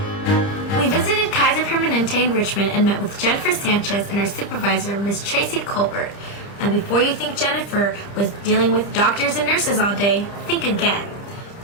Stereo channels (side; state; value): right; late; 30 ms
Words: We visited Kaiser Permanente in Richmond and met with Jennifer Sanchez and her supervisor, Ms. Tracy Colbert. And before you think Jennifer was dealing with doctors and nurses all day, think again.